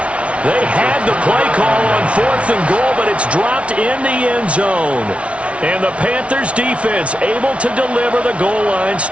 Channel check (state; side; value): late; left; 0.062 ms